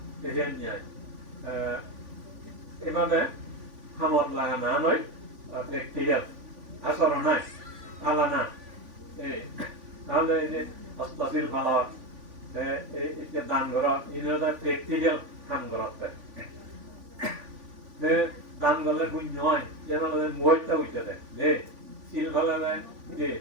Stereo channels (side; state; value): left; late; 3.6 ms